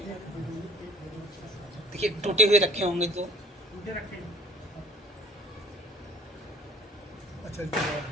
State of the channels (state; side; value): normal; both; correlation 0.49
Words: देखिए टूटे हुए रखे होंगे तो